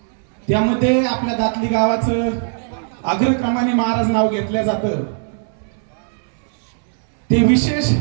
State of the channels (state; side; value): silent; left; 66 dB below the other